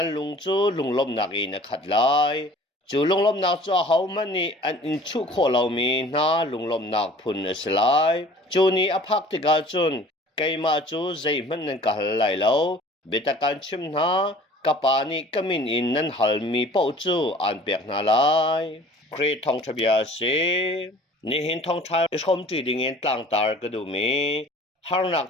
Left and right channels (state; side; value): normal; both; correlation 0.48